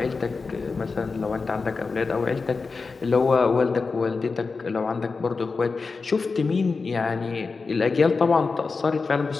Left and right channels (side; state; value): right; quieter; 4.4 dB